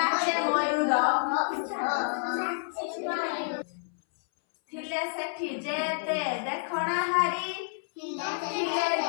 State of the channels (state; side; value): silent; right; 59 dB below the other